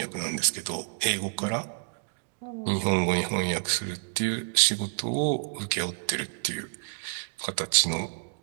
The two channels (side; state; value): left; silent; digital silence